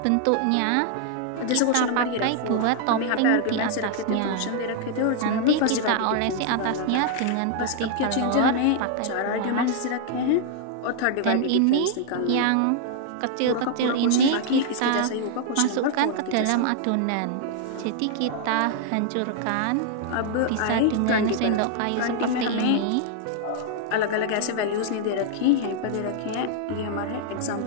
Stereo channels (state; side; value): different; both; correlation 0.00